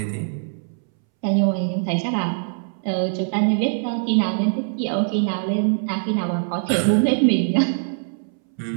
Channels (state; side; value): silent; left; 64 dB below the other